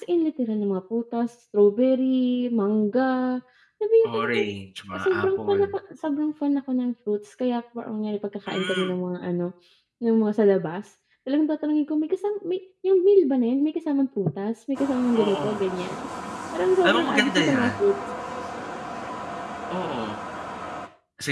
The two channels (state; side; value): identical; both; correlation 1.00